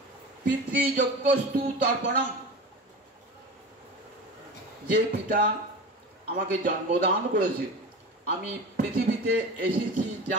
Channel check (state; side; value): normal; both; correlation 0.31